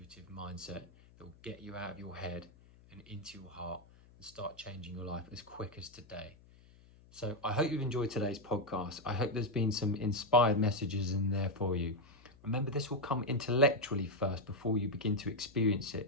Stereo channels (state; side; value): noise; left; hum, 25 dB below the sound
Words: mindset that will get you out of your head and into your heart and start changing your life as quick as today. So I hope you've enjoyed today's podcast. I hope there's been some inspired messages in there for you. Remember, this will come intellectually first before you begin to experience